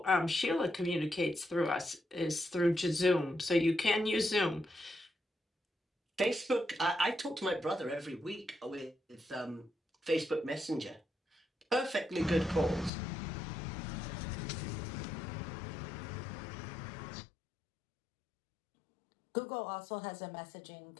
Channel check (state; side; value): drops out; right; at 12.9 s